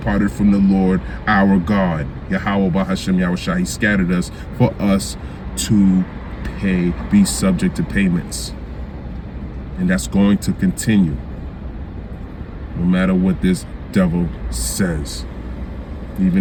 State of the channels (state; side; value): identical; both; correlation 1.00